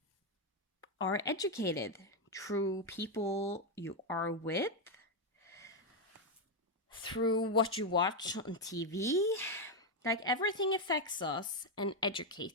are educated through people you are with, through what you watch on TV. Like everything affects us and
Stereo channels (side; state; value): both; normal; correlation 0.04